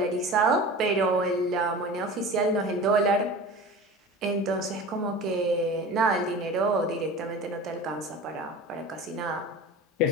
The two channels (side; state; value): both; normal; correlation 0.35